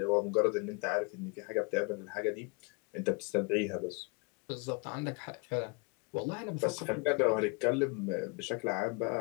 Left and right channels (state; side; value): quieter; right; 30.9 dB